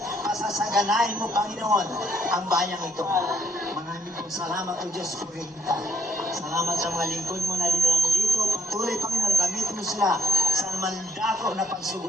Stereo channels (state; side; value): normal; both; correlation 0.72